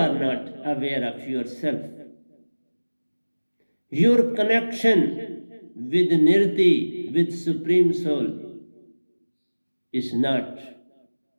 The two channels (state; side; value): inverted; both; correlation -1.00